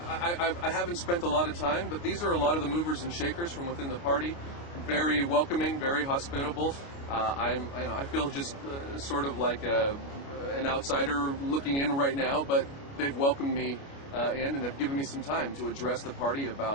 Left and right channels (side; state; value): right; late; 29 ms